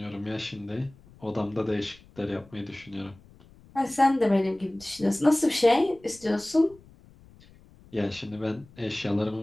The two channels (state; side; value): noise; left; rumble, 25 dB below the sound